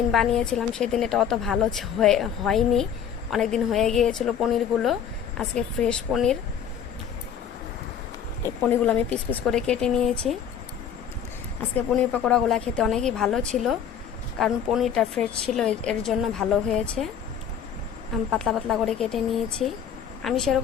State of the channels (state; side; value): quieter; right; 8.3 dB